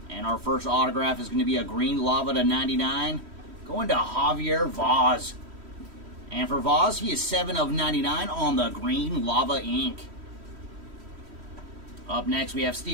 And our first autograph is going to be a green lava to 99, going to Javier Vaz. And for Vaz, he is 7 of 99 on the green lava ink. Up next, we have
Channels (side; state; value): left; late; 3.1 ms